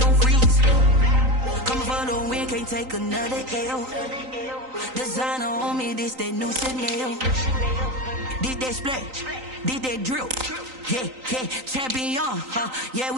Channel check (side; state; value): left; late; 3.9 ms